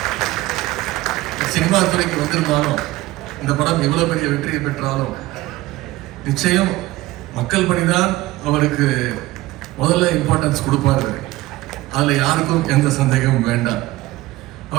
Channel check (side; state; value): left; quieter; 18.1 dB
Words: சினிமா துறைக்கு வந்திருந்தாலும், இந்த படம் எவ்வளவு பெரிய வெற்றியை பெற்றாலும் நிச்சயம் மக்கள் பணிதான் அவருக்கு முதல்ல இம்பார்ட்டன்ஸ் கொடுப்பாரு. அதுல யாருக்கும் எந்த சந்தேகமும் வேண்டாம்.